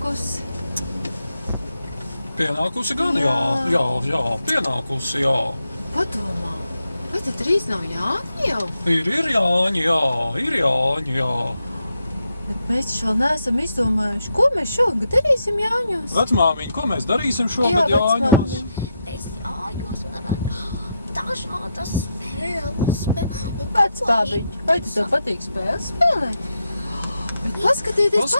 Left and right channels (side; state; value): both; inverted; correlation -0.84